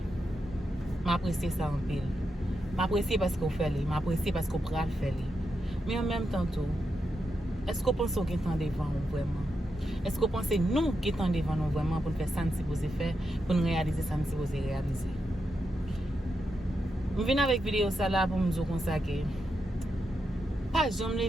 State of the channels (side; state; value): both; normal; correlation 0.85